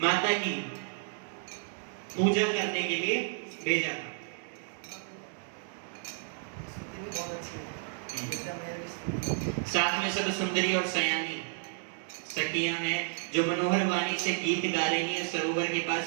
माता की पूजा करने के लिए भेजा था। साथ में सब सुंदरी और सयानी सखियां हैं, जो मनोहर वाणी से गीत गा रही हैं। सरोवर के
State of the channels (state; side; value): silent; left; 57 dB below the other